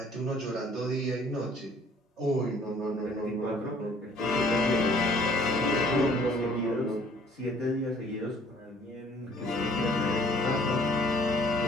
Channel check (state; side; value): normal; both; correlation 0.57